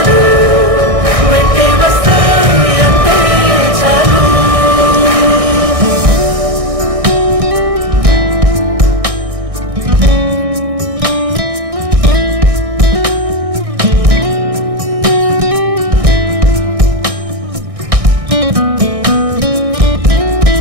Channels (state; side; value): late; left; 1.6 ms